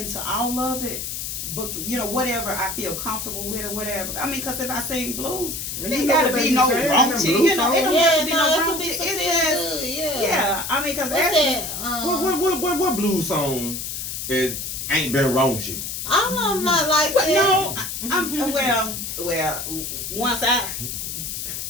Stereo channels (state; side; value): noise; left; hiss, 5 dB below the sound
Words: all of it. But whatever I feel comfortable with or whatever. I mean, because if I sing blues, it ain't gotta be no raunchy. It don't have to be no raunchy. It's just yeah. I mean, because what blues song ain't been raunchy? I'm not like that. No, I'm well. Once I.